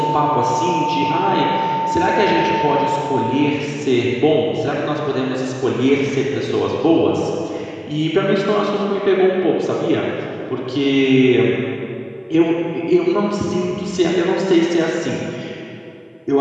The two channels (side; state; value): both; identical; correlation 1.00